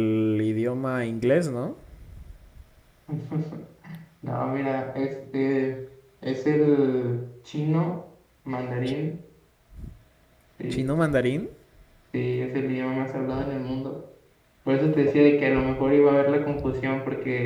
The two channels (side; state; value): both; identical; correlation 1.00